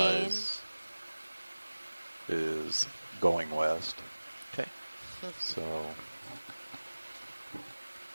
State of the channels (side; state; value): both; inverted; correlation -1.00